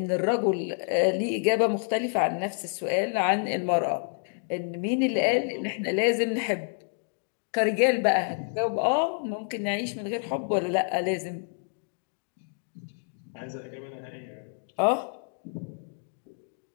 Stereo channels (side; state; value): right; silent; 59 dB below the other